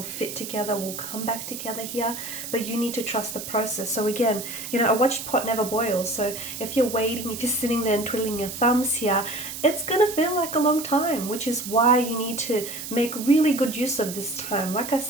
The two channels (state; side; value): noise; right; hiss, 8 dB below the sound